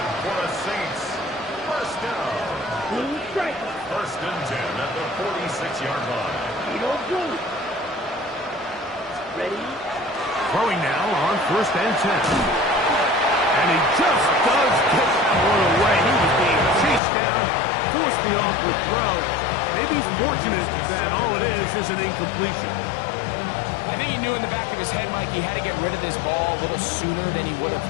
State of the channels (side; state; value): right; drops out; at 17.0 s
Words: for the Saints. First down. 1st and 10 at the 46-yard line. Ready? Throwing now on 1st and 10. And he just does get that one away. He was being chased down, forced the awkward throw. Maybe he's fortunate that all it is an incompletion. I think he knew in the back of his head, Mike, he had to get rid of this ball a little sooner than he would